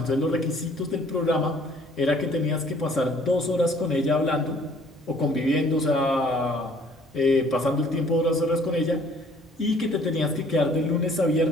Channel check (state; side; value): normal; both; correlation 0.57